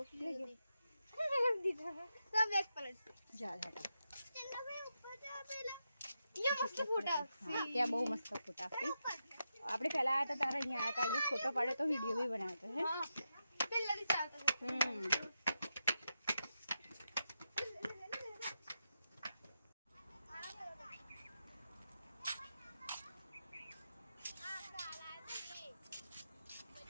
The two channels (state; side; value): inverted; both; correlation -0.87